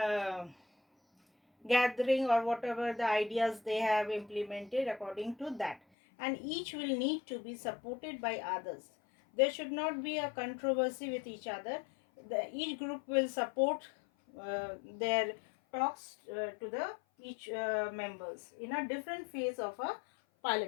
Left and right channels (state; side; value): drops out; right; at 5.8 s